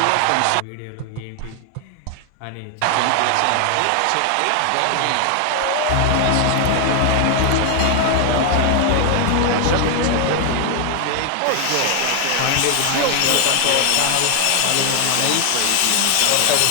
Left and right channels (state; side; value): different; both; correlation 0.00